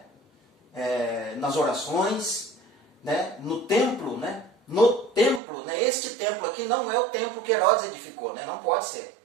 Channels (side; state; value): left; drops out; at 5.4 s